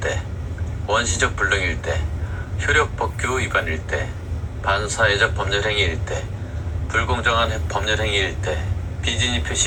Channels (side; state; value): both; identical; correlation 1.00